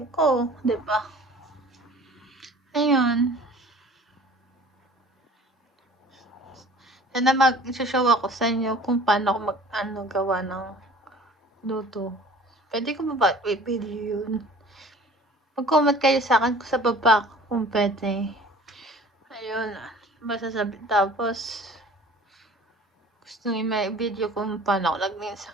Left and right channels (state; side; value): normal; both; correlation 0.47